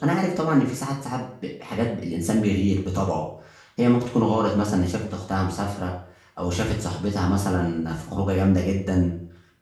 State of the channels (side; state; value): both; identical; correlation 1.00